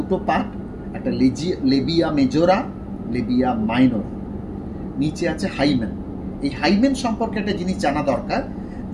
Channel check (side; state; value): both; identical; correlation 1.00